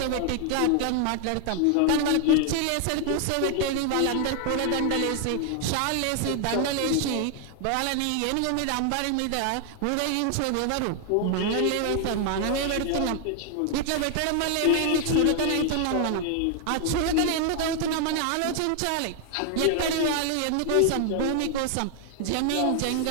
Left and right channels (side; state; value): both; different; correlation 0.00